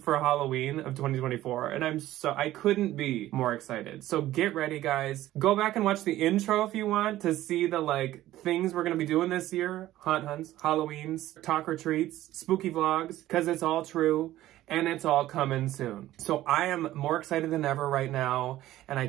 Halloween of 2024. And I couldn't be more excited. So get ready, guys. Go back and watch the intro if you want to see the like things we're going to be doing this year. Haunt hunts, Halloweens, talk or treats, spooky vlogs, because it's all true. And it's all coming soon. So I am more excited than ever right now, and I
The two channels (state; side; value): quieter; left; 14.8 dB